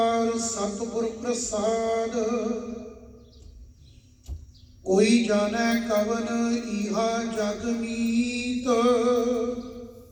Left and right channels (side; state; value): both; identical; correlation 1.00